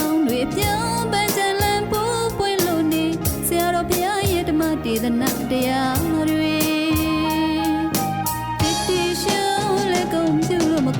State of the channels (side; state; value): both; identical; correlation 1.00